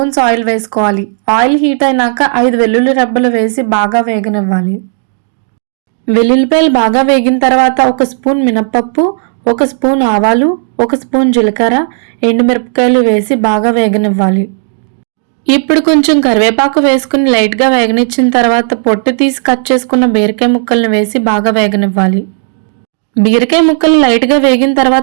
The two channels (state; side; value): silent; left; digital silence